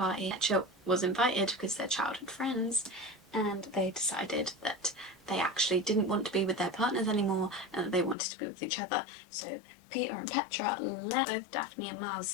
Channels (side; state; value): right; drops out; at 8.2 s